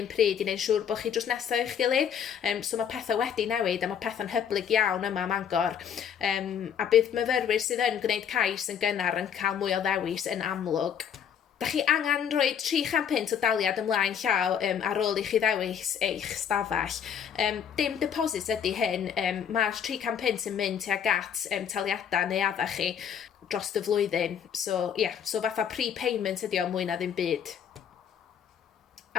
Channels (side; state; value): right; quieter; 8.2 dB